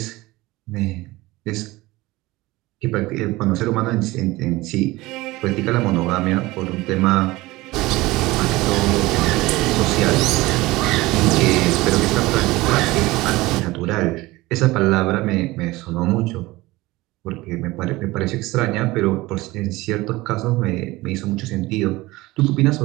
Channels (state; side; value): quieter; left; 19.9 dB